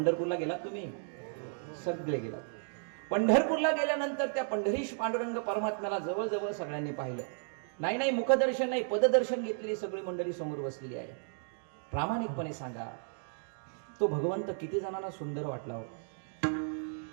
गेलात तुम्ही? सगळे गेलात. पंढरपूरला गेल्यानंतर त्या पंढरीश पांडुरंग परमात्म्याला जवळजवळ सगळ्यांनी पाहिलं. नाही मुखदर्शन नाही, पददर्शन घेतलेली सगळी मंडळी समोर बसलेली आहे. प्रामाणिकपणे सांगा, तो भगवंत किती जणांना सुंदर वाटला हो?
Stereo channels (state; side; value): silent; left; digital silence